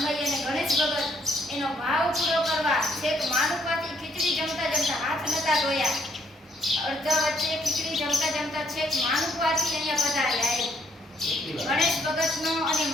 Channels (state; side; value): normal; both; correlation 0.69